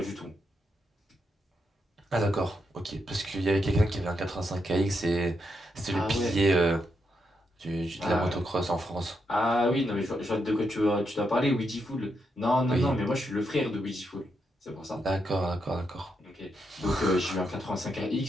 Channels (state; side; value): normal; both; correlation 0.81